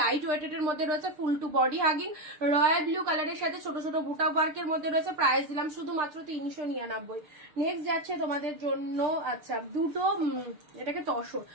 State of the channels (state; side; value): late; left; 6.6 ms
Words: ওয়েটেড এর মধ্যে রয়েছে, full to body hugging, royal blue কালারের সাথে ছোট ছোট বুটা ওয়ার্কের মধ্যে রয়েছে। প্রাইস দিলাম শুধুমাত্র 399। নেক্সট যাচ্ছে তোমাদের জন্য, আচ্ছা দুটো এটাকে